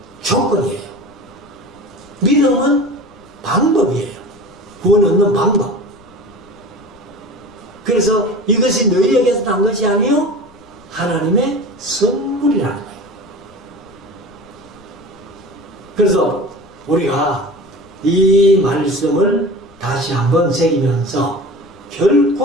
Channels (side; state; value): left; noise; rumble, 26 dB below the sound